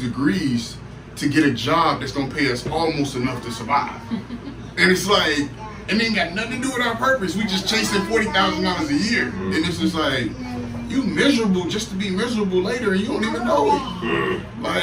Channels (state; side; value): identical; both; correlation 1.00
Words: to get a job that's gonna pay us almost enough to survive. And it's like, it ain't got nothing to do with our purpose. We just chasing $40,000 a year. And it's just like, you miserable just to be miserable later and you don't even know it.